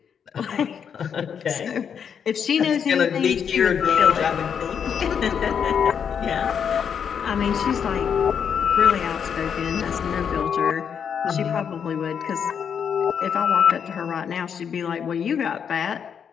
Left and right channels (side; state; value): right; quieter; 7.5 dB